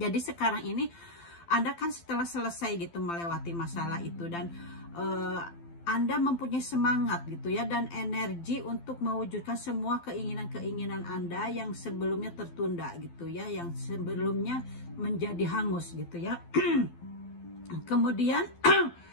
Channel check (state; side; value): late; right; 12 ms